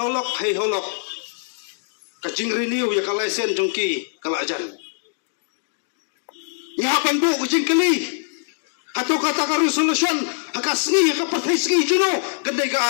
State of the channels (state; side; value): silent; right; digital silence